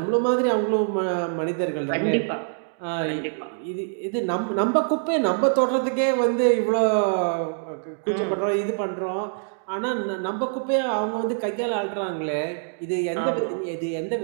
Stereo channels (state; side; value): silent; left; digital silence